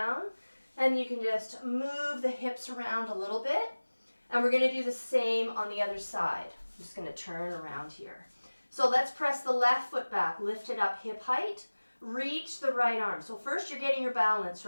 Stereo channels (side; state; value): both; inverted; correlation -1.00